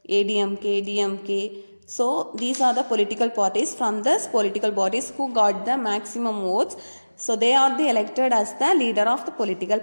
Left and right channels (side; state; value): both; inverted; correlation -1.00